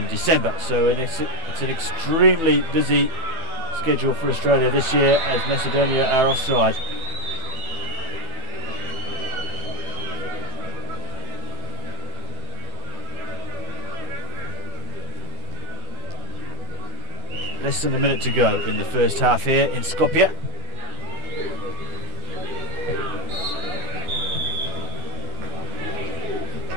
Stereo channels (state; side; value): late; left; 12 ms